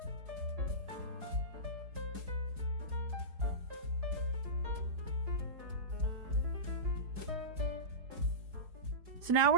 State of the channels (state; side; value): late; left; 4.7 ms